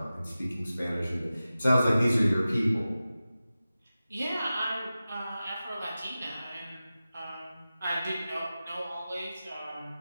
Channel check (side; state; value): both; inverted; correlation -0.95